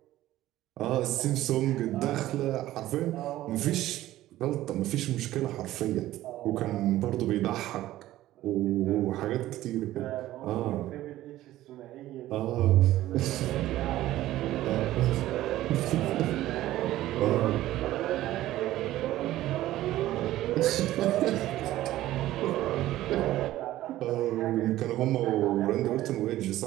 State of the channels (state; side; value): quieter; left; 14.9 dB